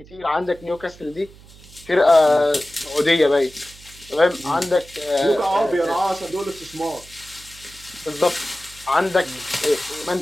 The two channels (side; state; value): right; noise; hum, 22 dB below the sound